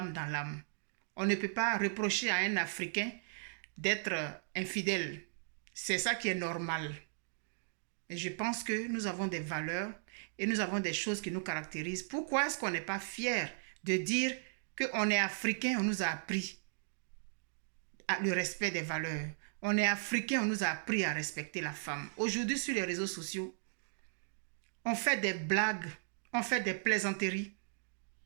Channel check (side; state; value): left; silent; digital silence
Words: dans l'âme. » On ne peut pas reprocher à un Africain d'être infidèle. C'est ça qui est normal. Et je pense que nous avons des valeurs et nous avons des choses qui nous caractérisent. Pourquoi est-ce qu'on n'est pas fier de dire qu'on est Africain, on nous a appris le respect des valeurs. On est Africain, on nous a appris à respecter la femme. Aujourd'hui, sur les réseaux sociaux, on fait des blagues, on fait des plaisanteries